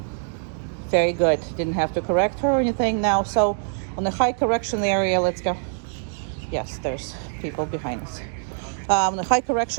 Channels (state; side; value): silent; left; digital silence